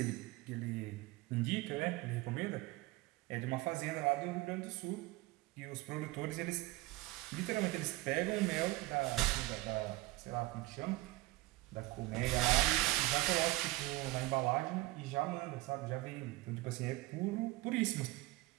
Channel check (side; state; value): left; quieter; 19.8 dB